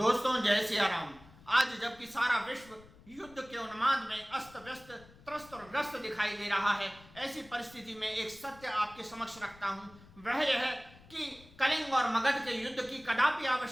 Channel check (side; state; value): left; noise; rumble, 23 dB below the sound